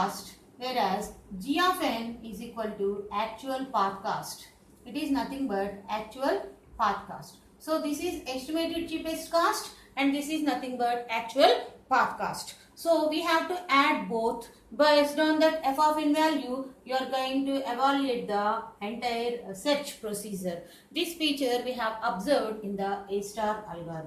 whereas g of n is equal to actual path cost. It is nothing but actual path cost. So this is estimated cheapest cost and this is nothing but actual path cost. So we have to add both. Based on that f of n value, you are going to evaluate the entire search procedure. This feature we have observed in the A star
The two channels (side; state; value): both; identical; correlation 1.00